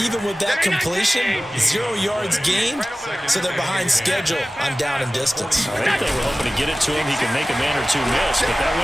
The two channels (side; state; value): both; normal; correlation 0.96